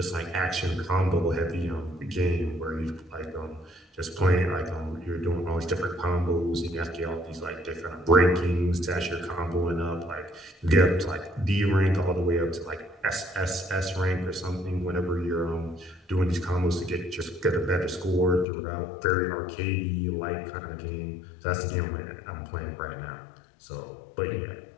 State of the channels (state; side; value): drops out; right; at 18.4 s